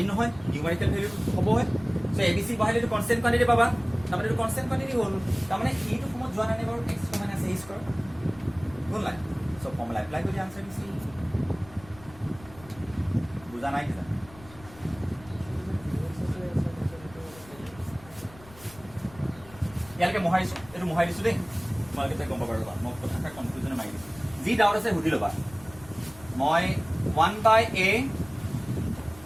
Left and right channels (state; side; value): noise; left; rumble, 21 dB below the sound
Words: নহয় নিউমেৰিকেল ভ্যালু হ'ব হয় সো abc বহালে এটো কনস্ট্যান্ট কোয়ান্টিটি পাবা তাৰমানে এটো কনস্ট্যান্ট কোয়ান্টিটি হ'ল তাৰমানে এইটো ফৰ্মত যোৱা নাই বাৰু x minus a স্কয়াৰ কোন লাইন সো ফৰ্মুলা এপ্লাই কৰি আনসাৰ দিছি বুজা নাই কিবা ইয়ালকে মহাইছো এটো মহাইছো দেই তোমালোকে গম পাবা ৰবা মই কথা কনফিউজনে মাৰি দিছো যি ডাউট আছে সুধি লবা মই 1 by a